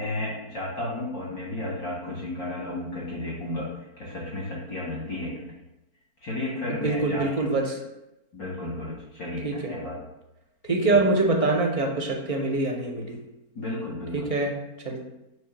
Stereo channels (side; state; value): right; late; 4.4 ms